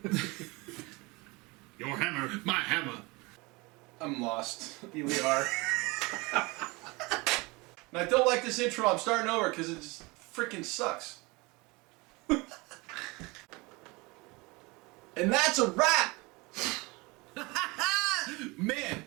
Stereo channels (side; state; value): left; quieter; 25.1 dB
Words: Your hammer. My hammer. I'm lost. Here we are. And I don't like this intro. I'm starting over because it just freaking sucks. And that's a wrap. Man,